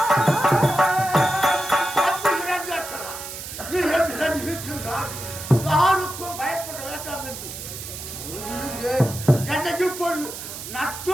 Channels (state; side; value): noise; right; hiss, 10 dB below the sound